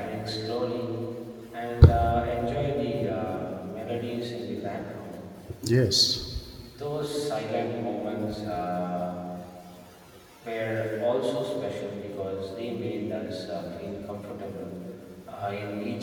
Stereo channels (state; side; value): identical; both; correlation 1.00